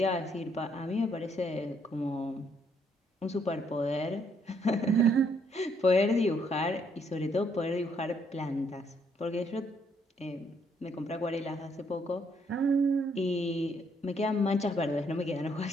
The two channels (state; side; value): normal; both; correlation 0.70